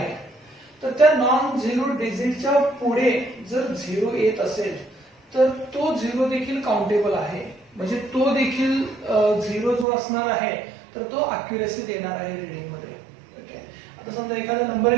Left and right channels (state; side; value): drops out; left; at 9.9 s